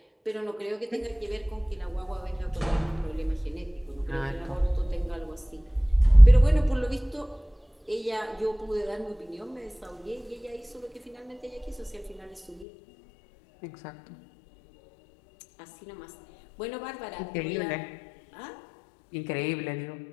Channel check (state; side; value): drops out; right; at 12.7 s